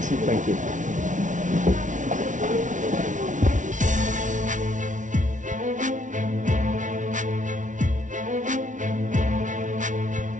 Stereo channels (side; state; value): left; late; 0.37 ms